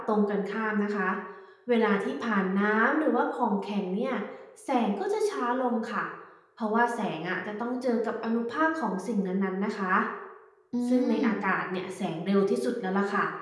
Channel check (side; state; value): both; identical; correlation 1.00